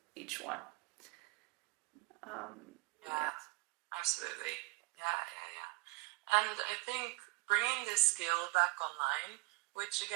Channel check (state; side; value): quieter; left; 23.7 dB